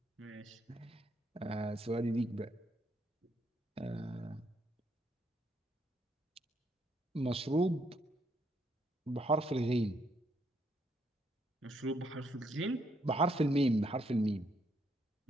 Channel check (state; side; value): normal; both; correlation 0.73